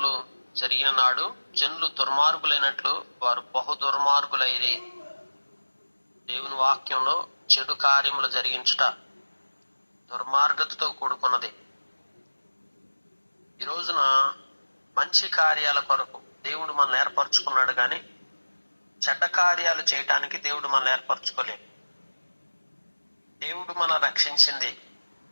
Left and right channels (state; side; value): inverted; both; correlation -1.00